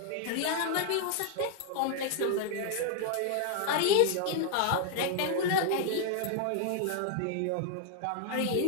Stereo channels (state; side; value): different; both; correlation 0.00